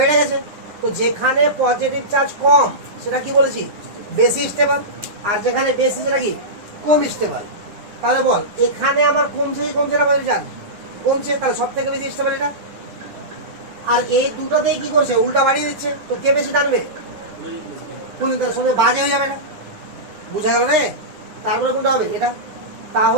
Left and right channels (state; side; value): late; left; 9.8 ms